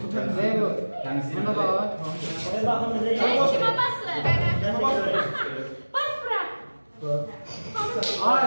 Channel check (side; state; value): both; inverted; correlation -1.00